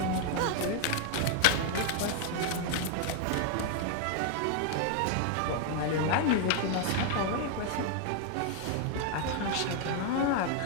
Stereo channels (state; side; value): different; both; correlation 0.00